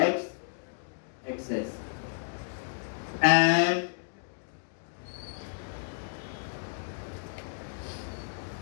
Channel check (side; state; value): right; silent; digital silence